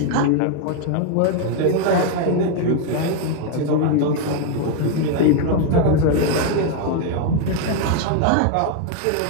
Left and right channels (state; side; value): different; both; correlation 0.01